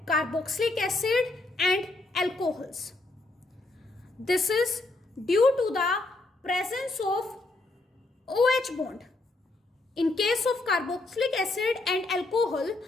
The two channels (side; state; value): right; quieter; 3.0 dB